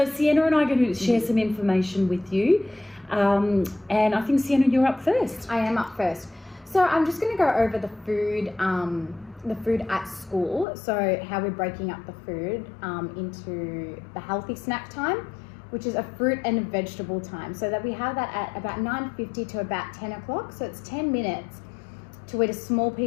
Sienna and I are going to share some information with you. And I think, Sienna, you're up first. I am up first. So I'm just going to go over the food at school. So how we're breaking up the food into the healthy snack time, which is a fruit and a vegetable time. So that we have that at about 9:50 to about 10 o'clock. So it's 10 minutes to eat a small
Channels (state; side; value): drops out; right; at 10.7 s